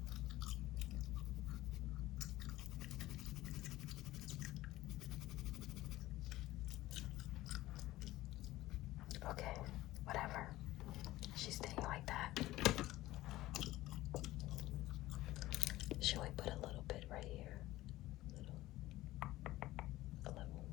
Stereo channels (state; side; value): quieter; right; 16.7 dB